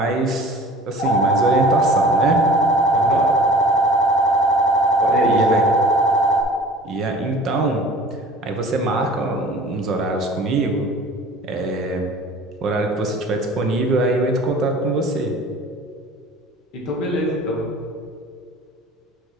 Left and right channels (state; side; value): normal; both; correlation 0.44